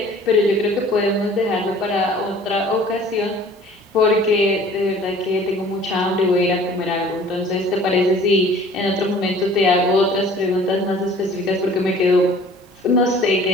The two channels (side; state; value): both; normal; correlation 0.49